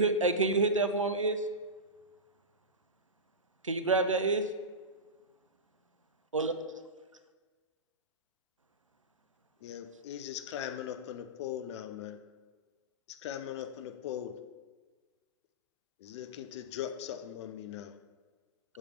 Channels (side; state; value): both; normal; correlation -0.17